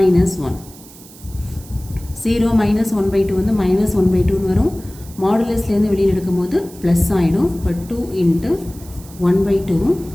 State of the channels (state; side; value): noise; right; hiss, 21 dB below the sound